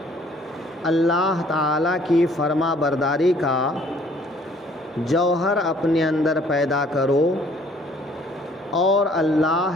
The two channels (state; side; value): normal; both; correlation 0.59